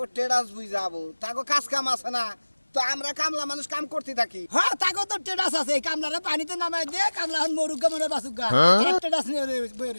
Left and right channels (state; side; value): inverted; both; correlation -1.00